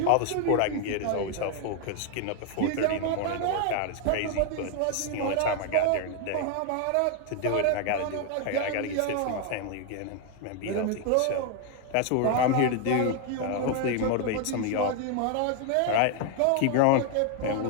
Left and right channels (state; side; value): different; both; correlation 0.01